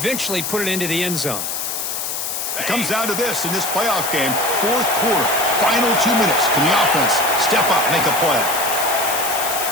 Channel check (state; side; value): noise; left; hiss, 3 dB below the sound